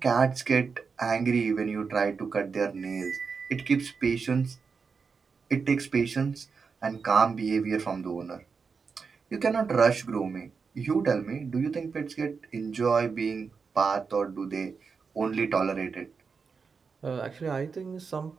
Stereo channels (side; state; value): left; quieter; 5.3 dB